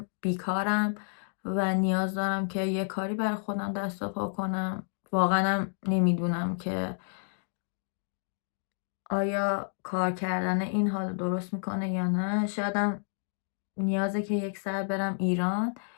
بیکارم و نیاز دارم که یه کاری برای خودم دست و پا کنم. واقعا نمیدونم که آیا کار کردن این حال درست میکنه یا نه. شایدم نیازه که یک ساعت برم ایران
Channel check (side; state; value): right; silent; digital silence